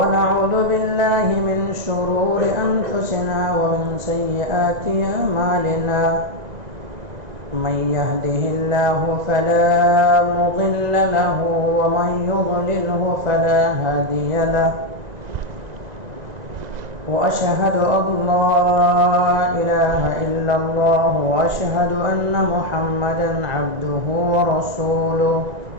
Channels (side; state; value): left; late; 1.9 ms